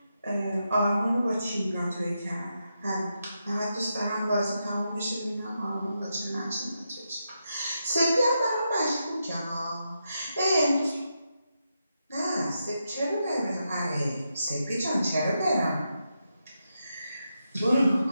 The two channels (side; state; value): both; inverted; correlation -0.85